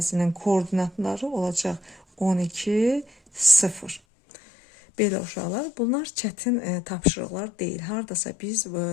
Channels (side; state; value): right; drops out; at 4.0 s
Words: koordinatları olacaq 12, 0. Belə uşaqlar, bunlar çətin tapşırıqlar deyil. Hardasa biz